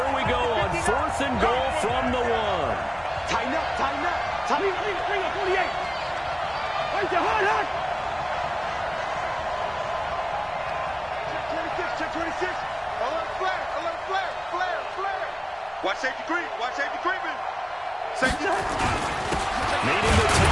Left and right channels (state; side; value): identical; both; correlation 1.00